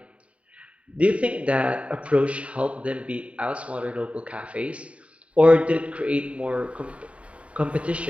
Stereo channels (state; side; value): late; left; 0.063 ms